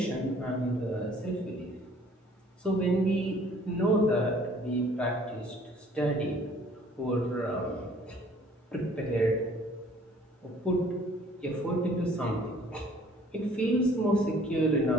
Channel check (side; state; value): both; normal; correlation 0.56